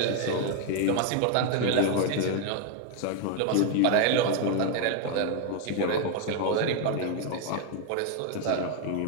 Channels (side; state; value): both; different; correlation 0.01